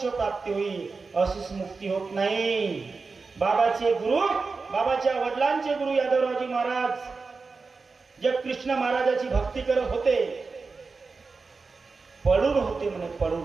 प्राप्ती होईल. अशीच मुक्ती होत नाही. बाबाचे गुरु, बाबाच्या वडिलांचे गुरु यादवरावजी महाराज जे कृष्ण महाराजाची भक्ती करत होते, पडून होते म्हणे,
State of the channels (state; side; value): quieter; left; 4.3 dB